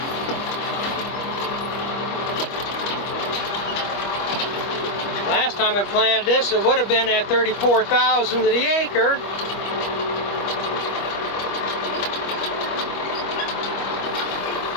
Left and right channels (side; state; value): right; late; 25 ms